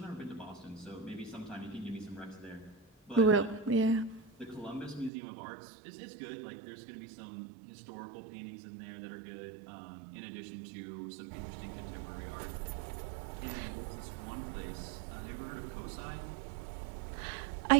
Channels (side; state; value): left; drops out; at 5.1 s